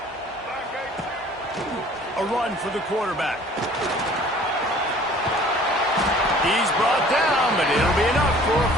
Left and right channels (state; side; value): normal; both; correlation 0.51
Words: A run for the quarterback. He's brought down, but it'll be enough for a